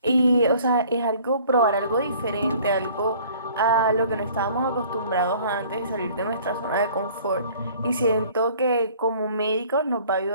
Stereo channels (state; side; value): inverted; both; correlation -0.53